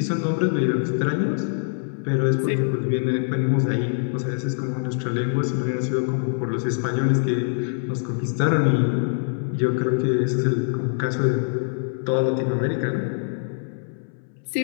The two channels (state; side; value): silent; right; 61 dB below the other